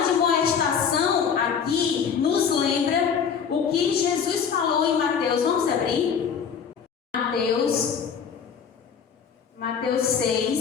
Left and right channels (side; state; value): right; quieter; 6.9 dB